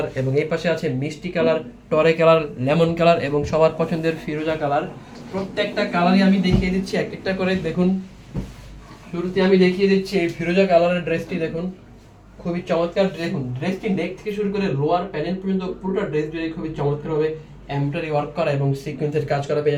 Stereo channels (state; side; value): identical; both; correlation 1.00